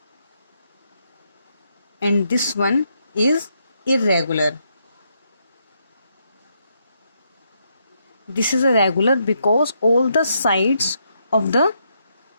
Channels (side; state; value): both; inverted; correlation -0.78